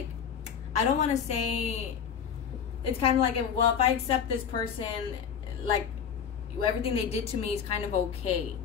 I don't want to say, it's kind of like, well, if I accept this person, like, everything they did to me is kind of okay.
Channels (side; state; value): right; quieter; 7.6 dB